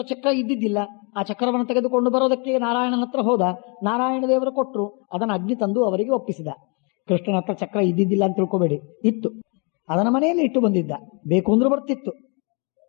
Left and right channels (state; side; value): quieter; right; 34.3 dB